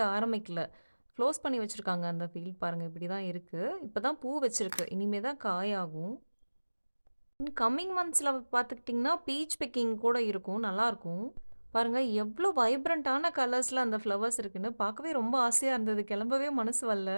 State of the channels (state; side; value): inverted; both; correlation -1.00